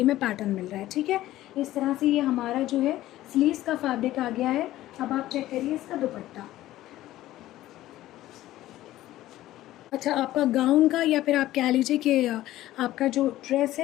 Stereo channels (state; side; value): quieter; right; 15.0 dB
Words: में पैटर्न मिल रहा है। ठीक है, इस तरह से ये हमारा जो है स्लीव्स का फैब्रिक आ गया है। अब आप चेक करिए इसका दुपट्टा। अच्छा, आपका गाउन का या फिर आप कह लीजिए कि आपका जो ड्रेस